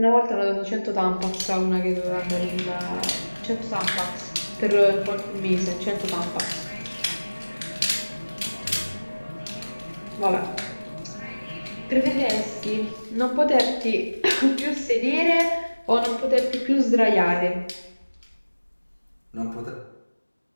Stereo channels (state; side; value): inverted; both; correlation -1.00